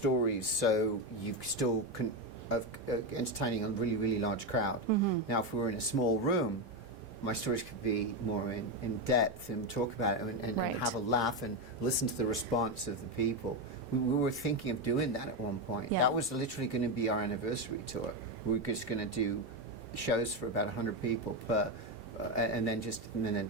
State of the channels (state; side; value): normal; both; correlation 0.10